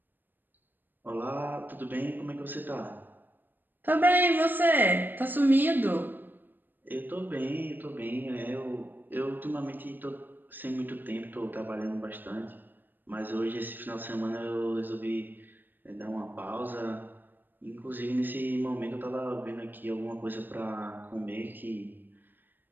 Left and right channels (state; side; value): late; left; 0.092 ms